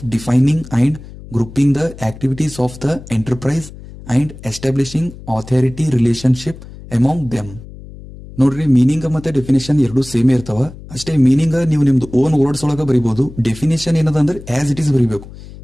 defining and grouping the activities of the enterprise and establishing authority relationship among them. ನೋಡ್ರಿ, meaning ಮತ್ತೆ definition ಎರಡು same ಇರ್ತಾವ. ಅಷ್ಟೇ meaning ನೀವು ನಿಮ್ದು ಓನ್ ವರ್ಡ್ಸ್ ಒಳಗ ಬರೀಬಹುದು. ಡೆಫಿನೇಷನ್ ಏನದ ಅಂದ್ರೆ ಆಸ್ ಇಟ್ ಈಸ್ ಬರೀಬೇಕು.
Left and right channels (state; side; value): noise; left; hum, 16 dB below the sound